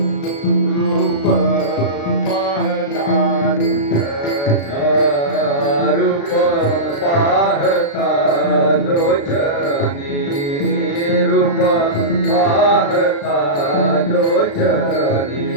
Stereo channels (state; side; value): late; right; 35 ms